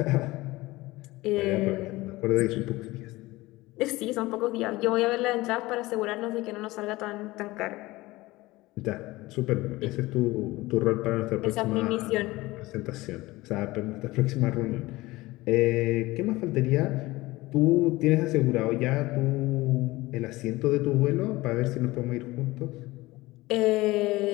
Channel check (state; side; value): quieter; right; 19.8 dB